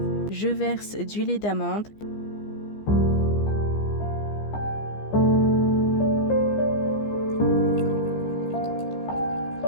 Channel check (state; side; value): late; right; 15 ms